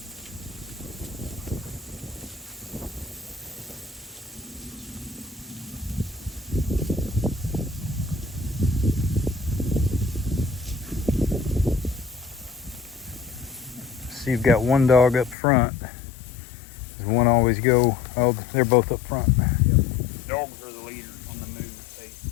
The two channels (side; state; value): right; drops out; at 15.4 s